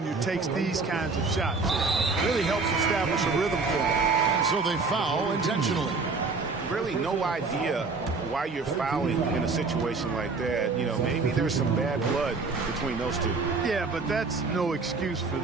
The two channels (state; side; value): quieter; left; 4.2 dB